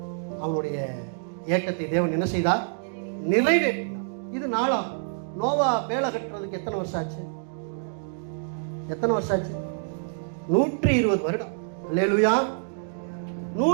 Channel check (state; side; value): silent; left; digital silence